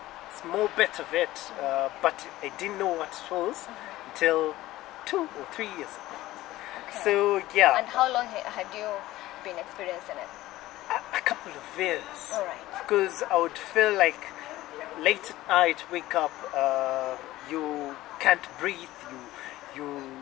small bit of it, but I didn't know what it was until 2 or 3 years ago. Okay. So yeah. And how long had you been experiencing it? A couple of years. All right. Because I would feel like late at night, wake up, you can't breathe,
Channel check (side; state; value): right; quieter; 16.5 dB